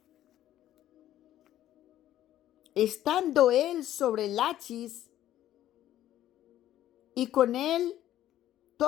Estando él sobre Lachis y con él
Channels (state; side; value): quieter; right; 12.8 dB